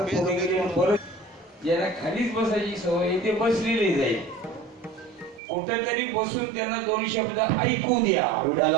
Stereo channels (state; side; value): drops out; left; at 5.4 s